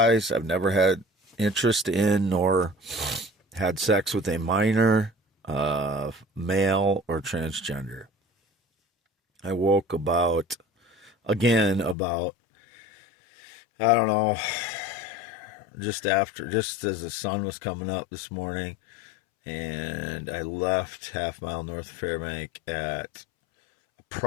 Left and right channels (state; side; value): drops out; right; at 12.0 s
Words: I've never had interest in nor had sex with a minor, male, or transgender. I woke about, I don't know, just as the sun was coming up this morning, and I left half mile north of Fairbank at